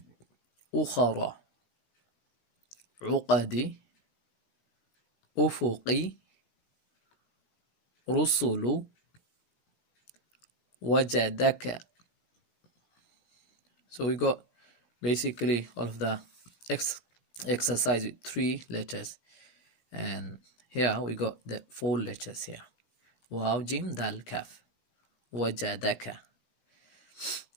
ukhara, uqadi, ufuqi, rusulu, wajadaka. So we got basically all of the exercise with 3 letters, and here we got the 4 letters here. Waw, jim, dal, kaf. Wajadaka.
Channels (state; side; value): late; right; 16 ms